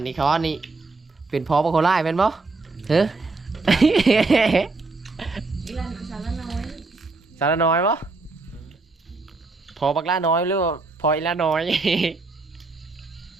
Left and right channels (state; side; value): quieter; left; 3.7 dB